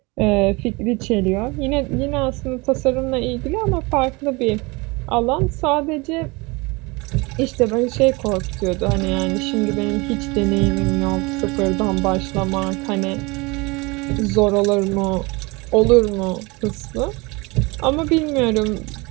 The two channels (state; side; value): quieter; left; 25.7 dB